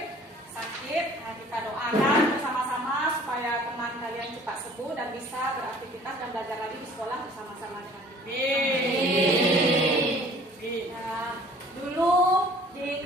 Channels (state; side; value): normal; both; correlation 0.52